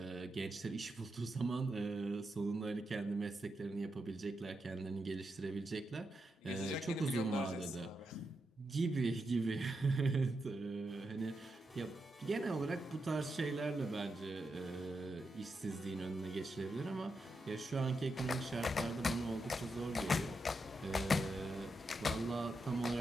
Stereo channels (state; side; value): normal; both; correlation 0.85